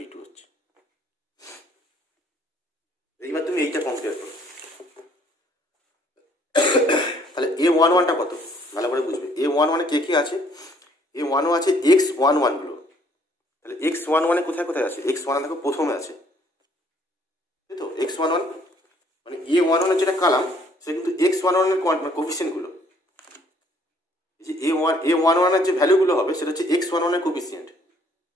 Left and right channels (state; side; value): normal; both; correlation 0.63